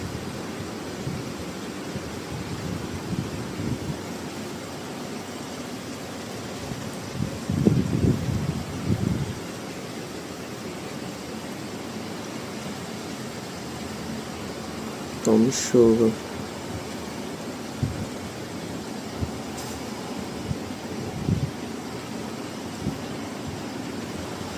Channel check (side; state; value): both; identical; correlation 1.00